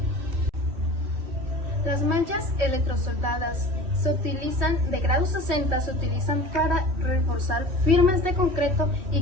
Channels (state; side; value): late; left; 2.7 ms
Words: Las mallas electrosoldadas se utilizan de grado 60, se utilizan para reforzar firmes de concreto